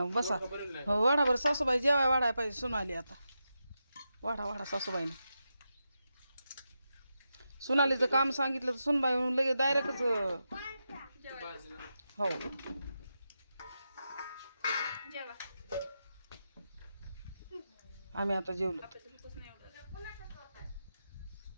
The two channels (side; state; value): both; inverted; correlation -0.88